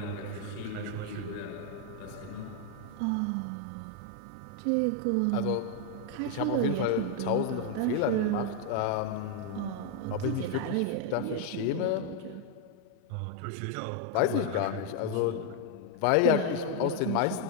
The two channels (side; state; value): both; different; correlation 0.00